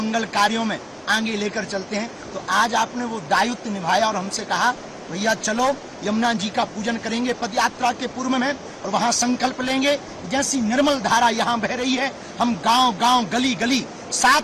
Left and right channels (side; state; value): both; identical; correlation 1.00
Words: कार्यों में आगे लेकर चलते हैं। तो आज आपने वो दायित्व निभाया और हमसे कहा भैया चलो यमुना जी का पूजन करेंगे पदयात्रा के पूर्व में, और वहाँ संकल्प लेंगे जैसी निर्मल धारा यहाँ बह रही है, हम गांव गांव गली गली